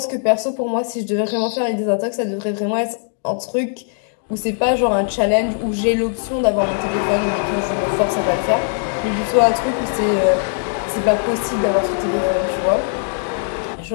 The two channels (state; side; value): silent; right; 60 dB below the other